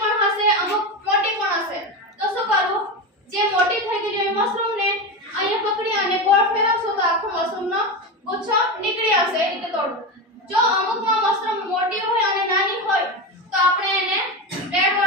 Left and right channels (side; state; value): both; normal; correlation 0.19